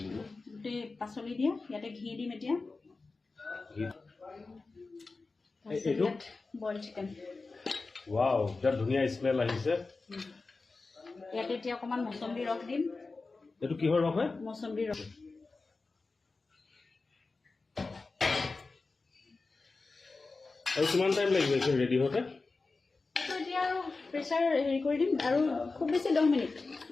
গোটেই পাচলি দিয়া, ইয়াতে ঘি দিম এতিয়া। এইটো বইল চিকেন। ৱাও, বিৰাট ধুনীয়া স্মেল আহিছে। ইয়াতে এতিয়া অকণমান মছন্দি ৰস দিম। এইটো কিহৰ ৰস হয়? মছন্দি ৰস। আৰু কিমান টাইম লাগিব এইটো ৰেডি হওঁতে? এতিয়া আৰু প্ৰেছাৰ হেৰি কৰি দিম আৰু খুব বেছি 10 মিনিট।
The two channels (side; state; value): right; quieter; 3.8 dB